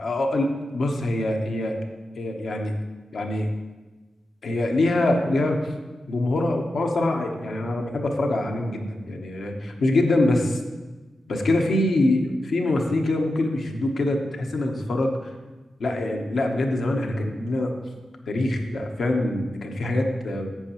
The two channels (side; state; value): both; normal; correlation 0.90